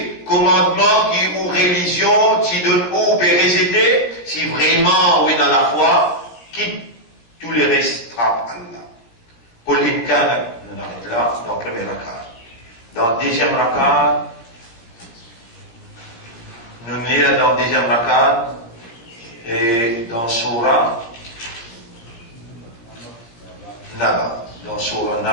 commandement qui ou religion qui donne ou pérécité, si vraiment oui dans la foi, qui tous les restes trappent Allah. Qul in kana, on arrête là, dans le premier rakat. Dans le deuxième rakat, nous sommes dans le deuxième rakat, et dans Surah Naba. Dans Surah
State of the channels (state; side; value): late; right; 17 ms